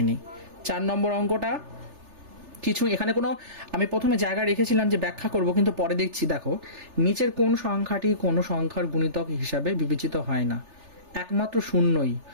নিই। 4 নম্বর অঙ্কটা কিছু এখানে কোনো আমি প্রথমে জায়গা রেখেছিলাম যে ব্যাখ্যা করব, কিন্তু পরে দেখছি দেখো নিচের কোন সংখ্যাটি কোনো সংখ্যার গুণিতক হিসাবে বিবেচিত হয় না? একমাত্র শূন্যই।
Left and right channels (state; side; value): late; left; 3.4 ms